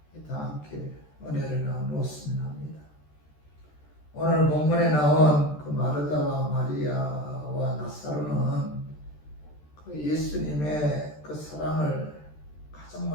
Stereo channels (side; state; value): right; late; 13 ms